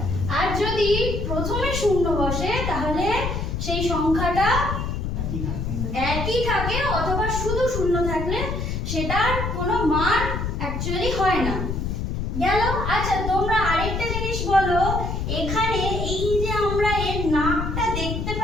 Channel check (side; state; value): left; noise; rumble, 2 dB below the sound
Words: আর যদি প্রথমে শূন্য বসে তাহলে সেই সংখ্যাটা একই থাকে, অথবা শুধু শূন্য থাকলে সেটার কোনো মান অ্যাকচুয়ালি হয় না। গেল। আচ্ছা, তোমরা আরেকটা জিনিস বলো, এখানে এই যে আমরা এর নাকটা দেখতে